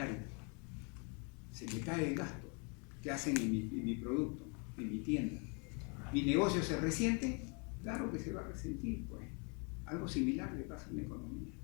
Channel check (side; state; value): right; quieter; 35.2 dB